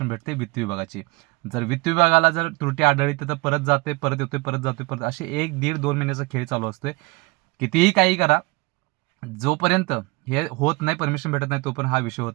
भेटते वित्त विभागाची. जर वित्त विभागाला जर त्रुटी आढळली तर परत जाते, परत येतोय, परत जातोय, परत असे 1-1.5-2 महिन्याचा खेळ चालू असतोय. कितीही काही करा जोपर्यंत हे होत नाही, परमिशन भेटत नाही, तोपर्यंत हा विषय होत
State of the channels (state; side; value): quieter; left; 25.4 dB